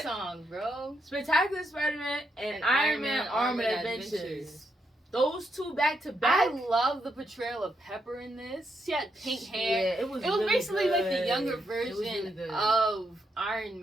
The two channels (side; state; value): both; normal; correlation 0.80